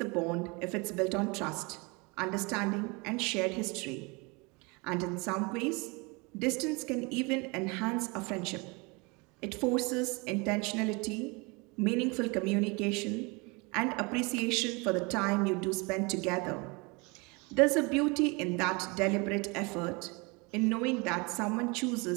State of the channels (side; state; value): left; quieter; 28.2 dB